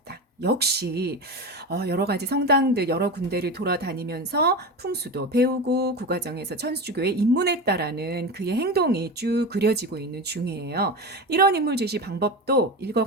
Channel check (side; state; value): both; normal; correlation 0.24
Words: 역시 여러 가지 성당들 여러 군데를 돌아다니면서 풍수도 배우고 그 과정에서 천주교에 입문했다라는 그의 행동이 쭉 그려지고 있는 중이에요. 이런 인물 제시 방법도